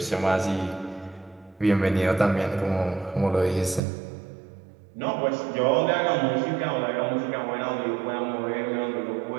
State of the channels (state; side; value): drops out; left; at 3.8 s